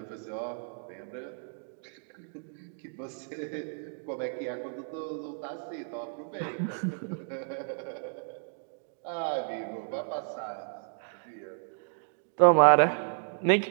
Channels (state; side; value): silent; left; digital silence